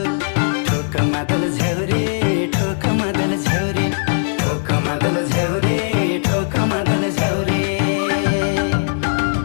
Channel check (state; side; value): silent; right; digital silence